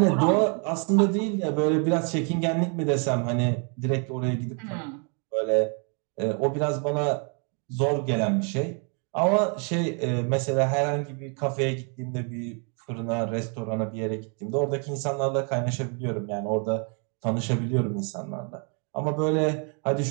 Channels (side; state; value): left; quieter; 38.8 dB